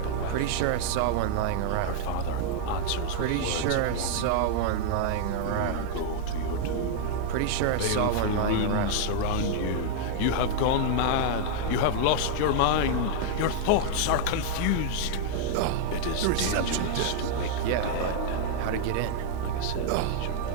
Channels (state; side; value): different; both; correlation -0.01